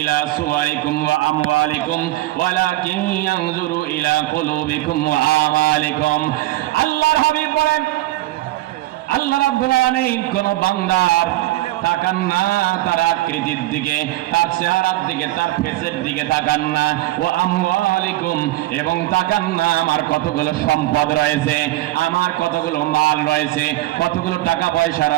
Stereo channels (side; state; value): left; quieter; 17.2 dB